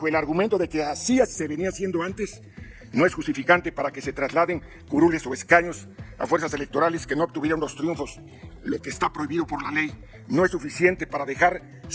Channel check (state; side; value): identical; both; correlation 1.00